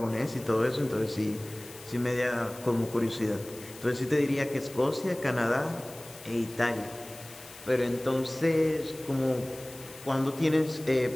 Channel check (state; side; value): noise; left; hiss, 18 dB below the sound